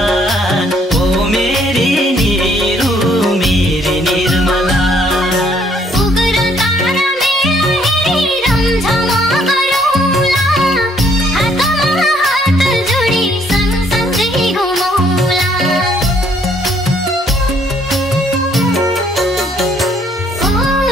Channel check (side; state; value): both; normal; correlation 0.65